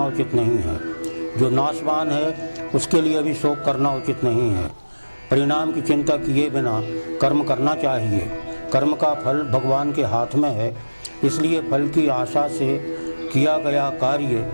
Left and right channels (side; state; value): both; inverted; correlation -1.00